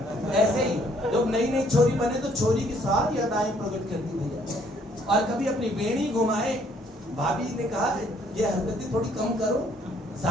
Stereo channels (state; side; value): normal; both; correlation 0.64